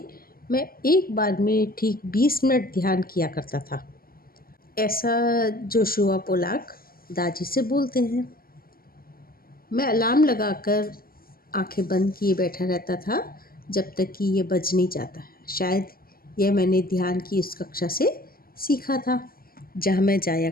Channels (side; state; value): right; late; 0.42 ms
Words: मैं एक बार में ठीक 20 मिनट ध्यान किया करता था। ऐसा जोशुआ पोलाक दादी से बोलते हैं। मैं अलार्म लगाकर आंखें बंद किए बैठा रहता था जब तक कि ये बज नहीं जाता। शायद यह मैंने ध्यान की उस कक्षा से सीखा था जहाँ मैं जाया